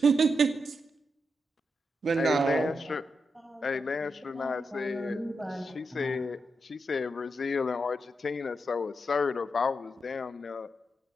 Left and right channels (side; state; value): both; normal; correlation 0.85